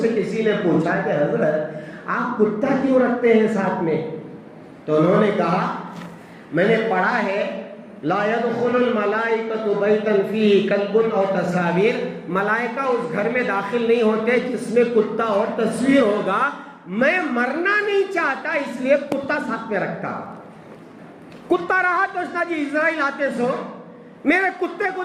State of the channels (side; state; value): both; identical; correlation 1.00